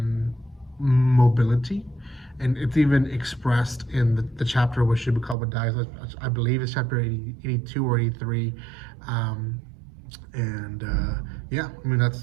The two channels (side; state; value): left; drops out; at 5.4 s